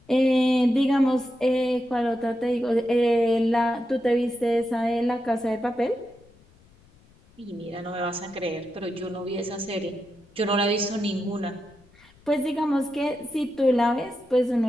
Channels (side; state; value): left; noise; rumble, 29 dB below the sound